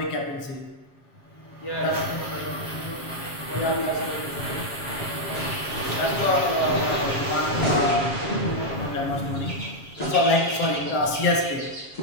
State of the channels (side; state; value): right; late; 7.3 ms